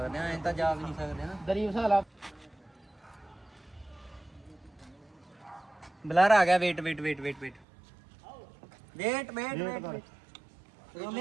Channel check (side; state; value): left; drops out; at 7.7 s